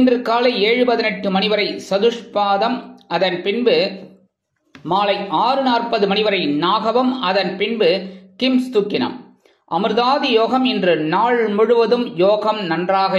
காலை 7:18 மணி வரை சதுஷ்பாதம், அதன் பின்பு மாலை 6:40 மணி வரை நாகவம், அதன் பின்பு கிம்ஸ்துக்கினம். அமிர்தாதி யோகம் இன்று நாள் முழுவதும் யோகம் நன்றாக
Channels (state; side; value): identical; both; correlation 1.00